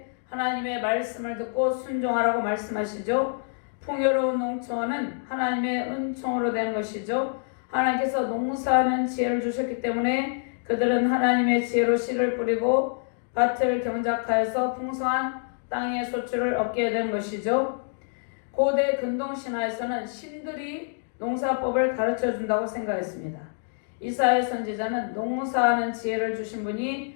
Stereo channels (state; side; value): silent; right; digital silence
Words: 하나님의 말씀을 듣고 순종하라고 말씀하시죠. 풍요로운 농촌은 하나님의 은총으로 된 것이죠. 하나님께서 농사하는 지혜를 주셨기 때문에 그들은 하나님의 지혜로 씨를 뿌리고 밭을 경작하여서 풍성한 땅의 소출을 얻게 된 것이죠. 고대 근동신화에서는 신들이 농사법을 가르쳐 준다고 생각했습니다. 이사야 선지자는 농사하는 지혜를 주신